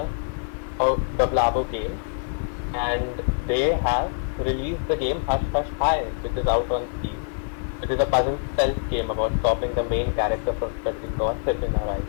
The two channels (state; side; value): silent; right; digital silence